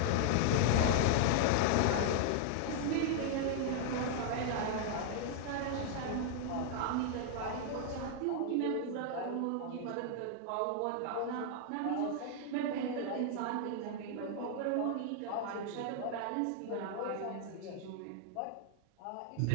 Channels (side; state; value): both; different; correlation 0.00